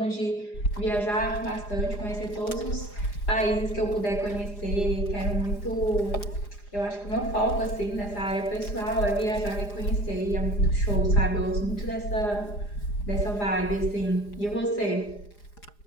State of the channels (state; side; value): late; right; 4.9 ms